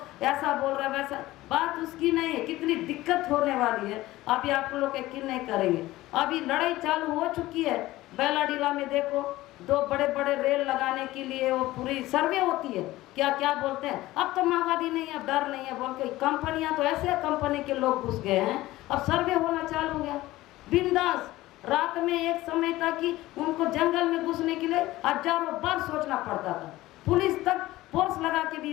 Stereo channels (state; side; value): quieter; right; 17.2 dB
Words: ऐसा बोल रहा है वैसा, बात उसकी नहीं है। कितनी दिक्कत होने वाली है अभी आप लोग यकीन नहीं करेंगे। अभी लड़ाई चालू हो चुकी है। बेलाडीला में देखो, 2 बड़े रेल लगाने के लिए वो पूरी सर्वे होती है, क्या बोलते हैं, अब तो माओवादी नहीं है, डर नहीं है बोल के कंपनियां, तो ऐसे कंपनी के लोग घुस गए हैं, अब सर्वे होना चालू हो गया बिंदास। रात में एक समय था कि उनको जंगल में घुसने के लिए हजारों बार सोचना पड़ता था, पुलिस तक फोर्स लगा के भी